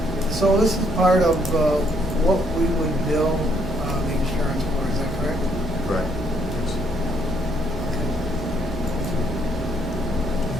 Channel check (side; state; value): both; normal; correlation 0.70